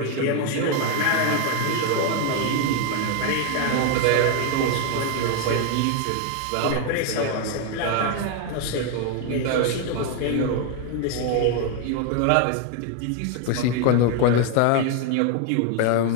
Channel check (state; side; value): different; both; correlation 0.01